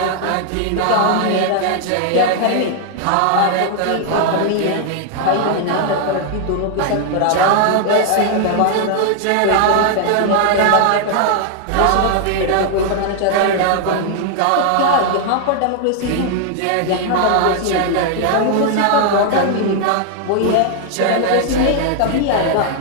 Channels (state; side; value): different; both; correlation 0.00